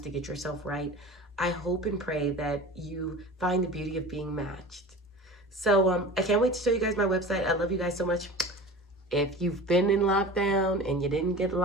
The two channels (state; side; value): normal; both; correlation 0.36